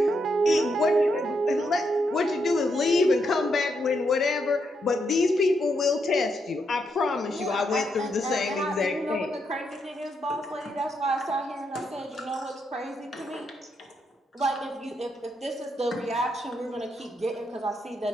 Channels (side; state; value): both; normal; correlation 0.80